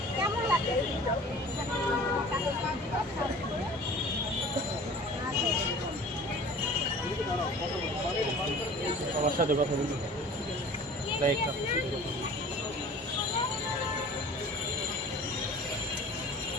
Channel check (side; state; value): both; normal; correlation 0.44